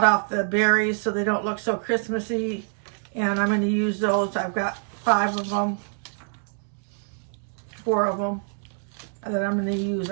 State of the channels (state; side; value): silent; left; 61 dB below the other